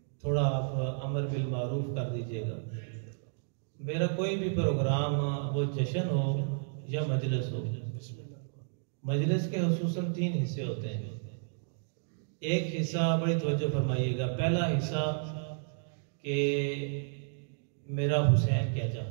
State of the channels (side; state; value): left; silent; digital silence